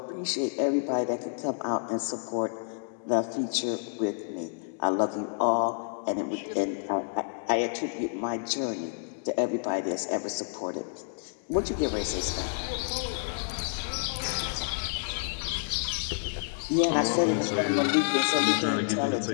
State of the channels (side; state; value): right; silent; digital silence